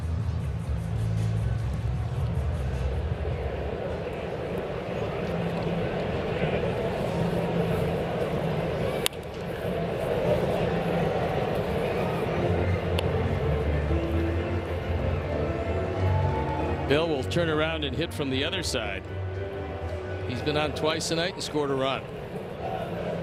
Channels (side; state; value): both; identical; correlation 1.00